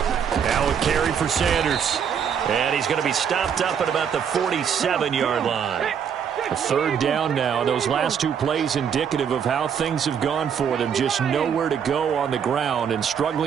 Now a carry for Sanders. And he's going to be stopped up at about the 47-yard line. A third down now. Those last two plays indicative of how things have gone for them. Just nowhere to go on the ground and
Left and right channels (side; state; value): left; quieter; 7.7 dB